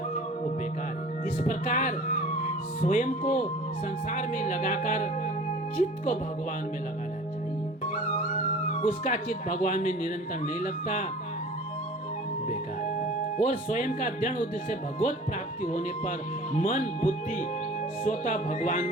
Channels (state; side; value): normal; both; correlation 0.44